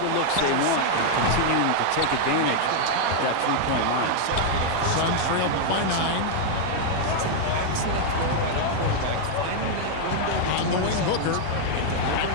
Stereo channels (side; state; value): both; different; correlation 0.00